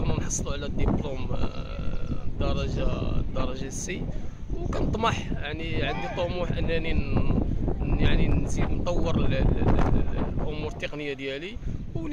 نحصلوا على الدبلوم الدرجه السي، وكنطمح يعني عندي طموح انني يعني نزيد نطور الامور التقنيه ديالي،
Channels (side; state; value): both; identical; correlation 1.00